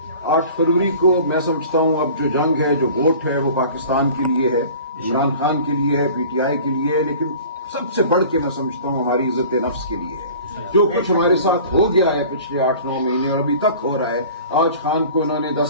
8 فروری کو میں سمجھتا ہوں اب جو جنگ ہے، جو ووٹ ہے، وہ پاکستان کے لیے ہے، عمران خان کے لیے ہے، پی ٹی آئی کے لیے ہے، لیکن سب سے بڑھ کے میں سمجھتا ہوں ہماری عزت نفس کے لیے ہے. جو کچھ ہمارے ساتھ ہو گیا ہے پچھلے 8-9 مہینے اور ابھی تک ہو رہا ہے. آج خان کو انہوں نے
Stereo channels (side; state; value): both; inverted; correlation -0.43